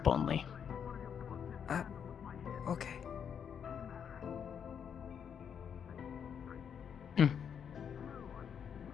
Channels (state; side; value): quieter; right; 7.7 dB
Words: only. Okay. Hey,